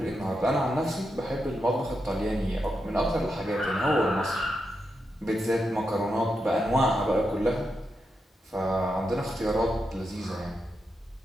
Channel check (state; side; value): normal; both; correlation 0.85